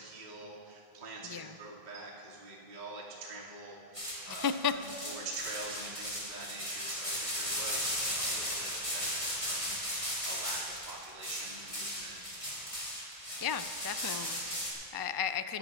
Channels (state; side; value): late; left; 1.5 ms